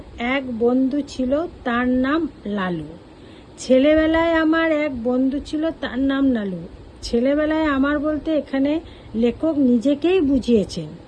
এক বন্ধু ছিল, তার নাম লালু। ছেলেবেলায় আমার এক বন্ধু ছিল, তার নাম লালু। ছেলেবেলায় আমার বলতে এখানে লেখক নিজেকেই বুঝিয়েছেন।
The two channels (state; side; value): identical; both; correlation 1.00